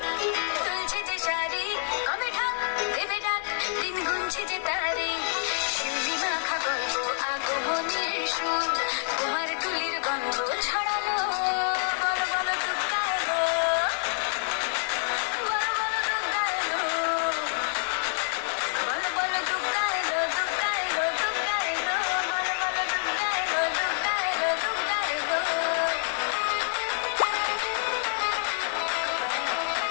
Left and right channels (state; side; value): silent; right; 60 dB below the other